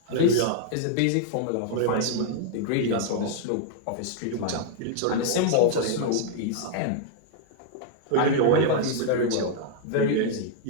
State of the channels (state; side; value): different; both; correlation -0.01